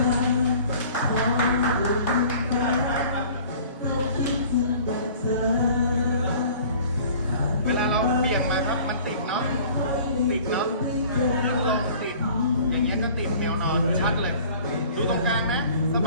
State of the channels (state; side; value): inverted; both; correlation -0.48